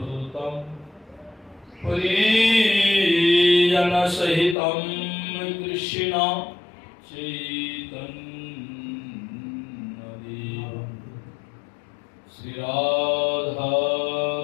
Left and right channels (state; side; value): drops out; right; at 4.5 s